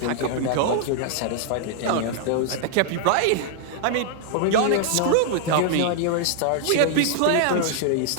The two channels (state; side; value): different; both; correlation 0.00